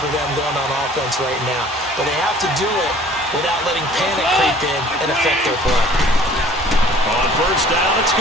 for them going on offense right now. But they have to do it without letting panic creep in and affect their play. On first down, it's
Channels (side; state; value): both; normal; correlation 0.51